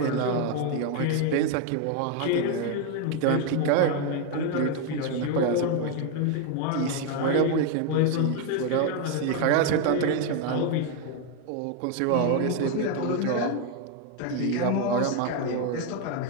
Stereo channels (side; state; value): both; different; correlation 0.01